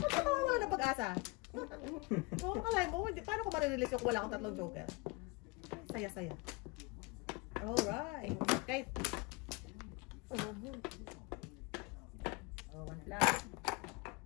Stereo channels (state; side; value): quieter; right; 27.2 dB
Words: ka mawawala ng pag-asa. Oo, kalay mo, paano ko marirelease yung wala akong tatlong joker? Saya-saya. Alright. Okay. Oh, one flag.